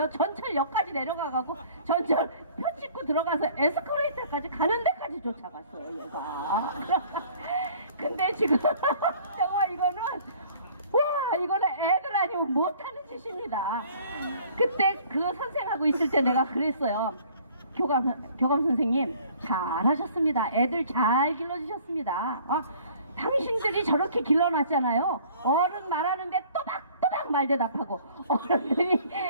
전철역까지 내려가갖고 전철 표 찍고 들어가서 에스컬레이터까지 가는 데까지 쫓아갔어요, 얘가. 근데 지금 정말 이거는 와, 이거는 애들 아니면 못하는 짓입니다. 그때 그 선생하고 있을 때 내가 그랬어요. 교감 선생님 잘하셨습니다. 애들 잘 길러주셨습니다. 당신들이 저렇게 길러놨잖아요. 어른 말하는데 또박또박 말대답하고 어른들이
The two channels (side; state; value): both; inverted; correlation -0.54